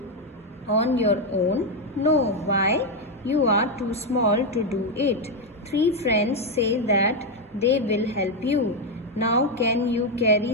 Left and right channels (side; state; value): both; normal; correlation 0.05